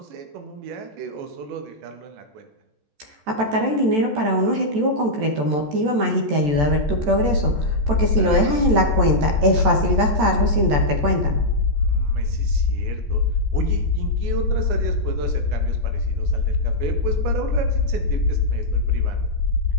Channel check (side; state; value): left; late; 14 ms